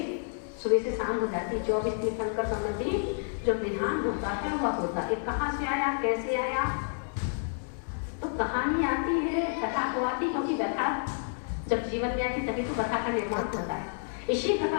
सुबह से शाम हो जाती है। 24 तीर्थंकर संबंधी जो विधान होता है वह होता है। कहाँ से आया, कैसे आया, तो कहानी आती है, कथा तो आती, क्योंकि कथा जब जीवन में आती तभी तो कथा का निर्माण होता है। इसी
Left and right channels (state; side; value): silent; right; digital silence